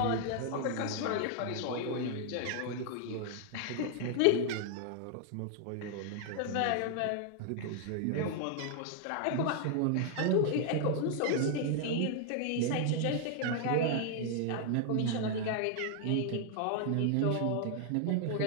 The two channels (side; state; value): both; different; correlation 0.00